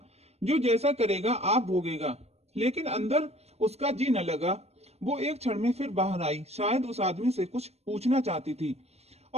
जो जैसा करेगा आप भोगेगा। लेकिन अंदर उसका जी न लगा। वो एक क्षण में फिर बाहर आई। शायद उस आदमी से कुछ पूछना चाहती थी,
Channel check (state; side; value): late; left; 0.31 ms